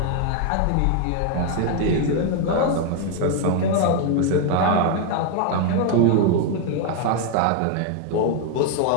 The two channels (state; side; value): different; both; correlation 0.00